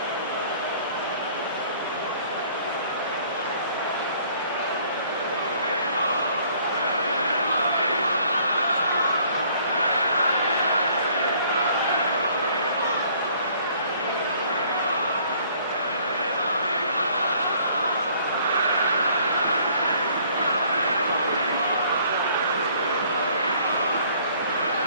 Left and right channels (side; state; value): both; inverted; correlation -0.59